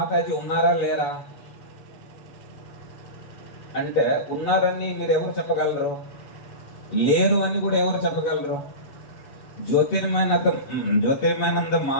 ఉన్నారా లేరా అంటే, ఉన్నారని మీరు ఎవరు చెప్పగలరు? లేరు అని కూడా ఎవరు చెప్పగలరు? జ్యోతిర్మయానంద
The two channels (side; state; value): right; late; 7.1 ms